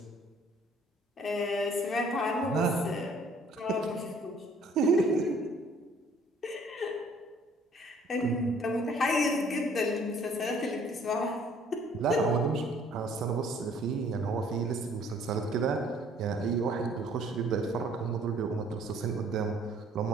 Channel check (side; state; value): both; normal; correlation 0.58